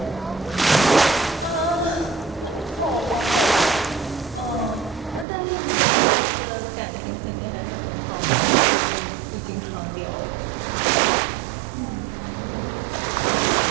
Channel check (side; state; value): left; drops out; at 5.2 s